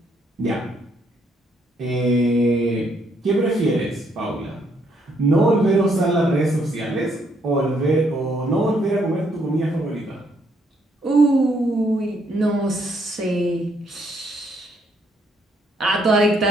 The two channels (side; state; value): both; normal; correlation 0.71